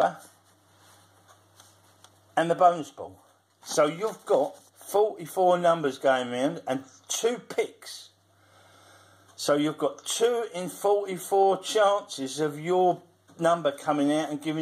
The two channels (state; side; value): identical; both; correlation 1.00